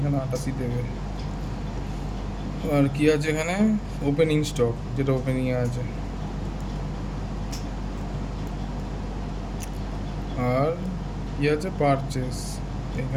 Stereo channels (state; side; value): identical; both; correlation 1.00